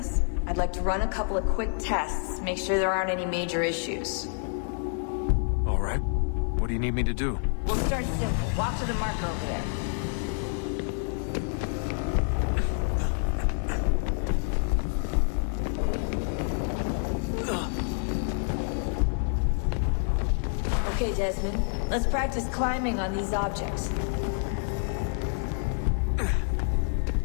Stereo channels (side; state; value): right; silent; 59 dB below the other